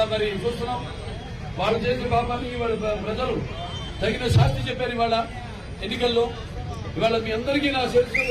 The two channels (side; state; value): both; identical; correlation 1.00